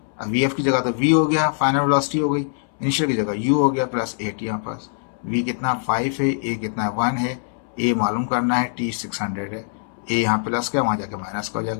अब वी एफ की जगह तो वी हो गया, फाइनल वेलोसिटी हो गई, इनिशियल की जगह यू हो गया प्लस ए टी। यहाँ पास वी कितना 5 है, ए कितना 1 है, ए मालूम करना है, टी 600 है, ए यहाँ प्लस का वहाँ जाकर माइनस का हो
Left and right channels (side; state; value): right; silent; 64 dB below the other